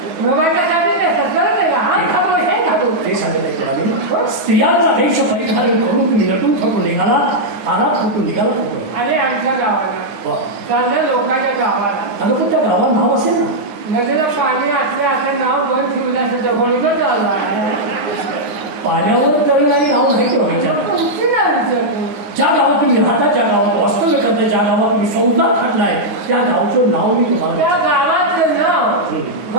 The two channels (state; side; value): late; left; 9.6 ms